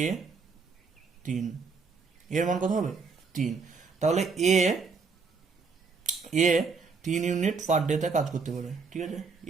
এ 3, এর মান কত হবে 3। তাহলে এ এ 3 ইউনিট পার ডেতে কাজ করতে পারে, ঠিক আছে।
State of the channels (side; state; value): left; quieter; 4.9 dB